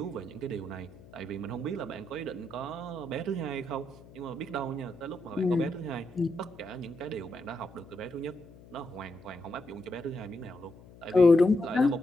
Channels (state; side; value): noise; left; hum, 21 dB below the sound